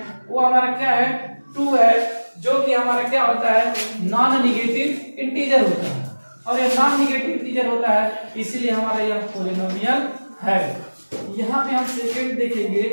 वो हमारा क्या है? 2 है, जो कि हमारा क्या होता है? नॉन नेगेटिव इंटीजर होता है, और ये नॉन नेगेटिव इंटीजर होता है इसीलिए हमारा यह पॉलिनोमियल है। यहाँ पे हम सेकंड देखेंगे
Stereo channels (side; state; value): both; inverted; correlation -1.00